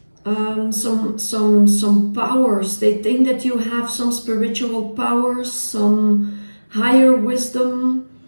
some powers. They think that you have some spiritual powers, some higher wisdom,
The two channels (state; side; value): inverted; both; correlation -1.00